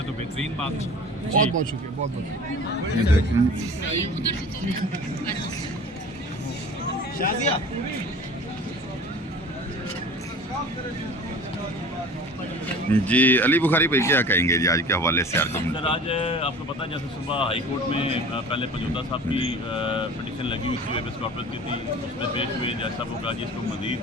तो बेहतरीन बात। बहुत बहुत शुक्रिया, बहुत बहुत शाजिया जी। अली बुखारी भाई क्या कहेंगे जी आज के हवाले से? सर आज आपको पता है जैसे सुबह हाई कोर्ट में पहले पंजोता साहब की पिटीशन लगी हुई थी, वेबस कॉर्पस की थी, उसमें पेश हुए जैसा वो कहा जी इसको मजीद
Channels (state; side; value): normal; both; correlation 0.41